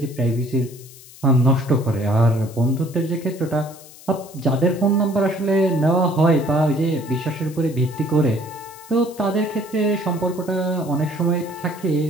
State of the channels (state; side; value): noise; left; hiss, 20 dB below the sound